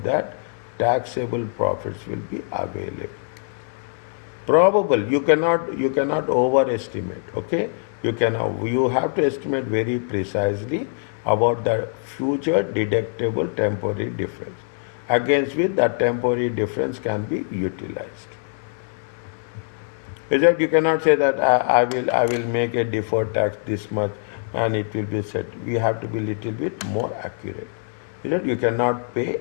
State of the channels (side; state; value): right; silent; digital silence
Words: that taxable profits will be available. Probable, you cannot overestimate. Okay, you have to estimate very precisely about the future deductible temporary difference, against which that temporary difference can be utilized. Is that you cannot say that I will make a deferred tax this much and it will be set. We have to be little bit more accurate. Is that you cannot pay